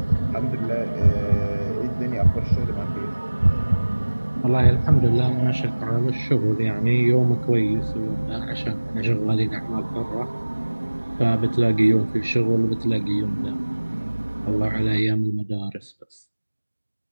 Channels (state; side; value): inverted; both; correlation -1.00